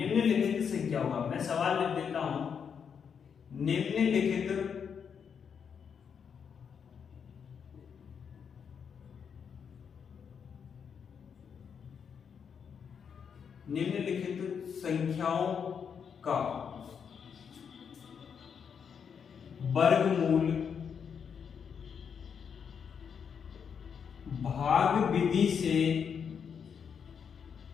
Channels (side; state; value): right; quieter; 7.0 dB